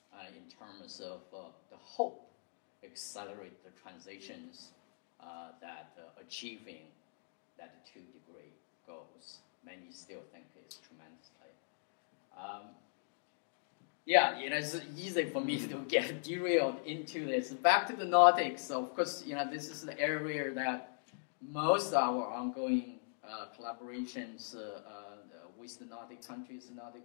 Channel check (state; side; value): silent; right; digital silence